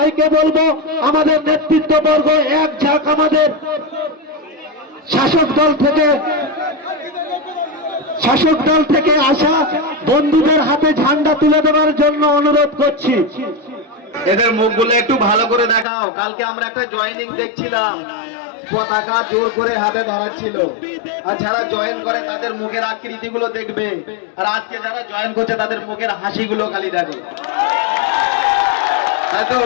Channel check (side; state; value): right; drops out; at 15.9 s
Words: বলবো আমাদের নেতৃত্ববর্গ এক ঝাঁক আমাদের শাসক দল থেকে আসা বন্ধুদের হাতে ঝান্ডা তুলে দেওয়ার জন্য অনুরোধ করছি। এদের মুখগুলো একটু ভালো করে দেখাও। কালকে আমরা একটা জয়েনিং দেখছিলাম, পতাকা জোর করে হাতে ধরাচ্ছিল, আর যারা জয়েন করে তাদের মুখের আকৃতিগুলো দেখবে, আর আজকে যারা জয়েন করছে তাদের মুখের হাসিগুলো খালি দেখো। তাই তো